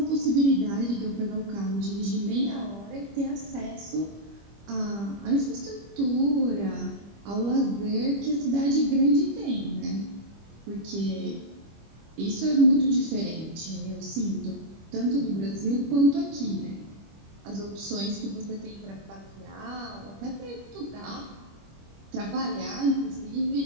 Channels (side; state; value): left; late; 25 ms